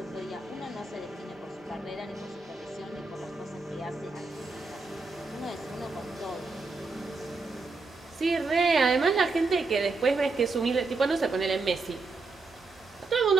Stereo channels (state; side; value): quieter; left; 3.8 dB